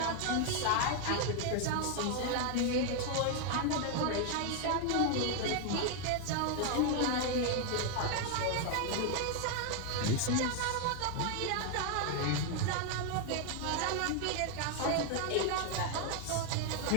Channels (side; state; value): both; different; correlation 0.00